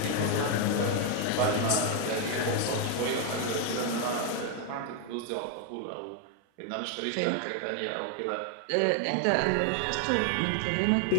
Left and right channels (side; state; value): both; different; correlation 0.01